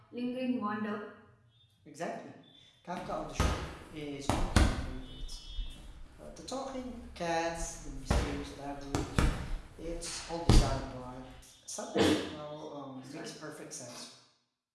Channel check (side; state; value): both; identical; correlation 1.00